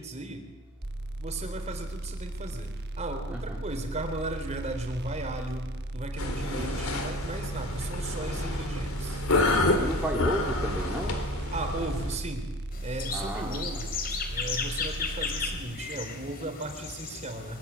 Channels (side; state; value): both; normal; correlation 0.40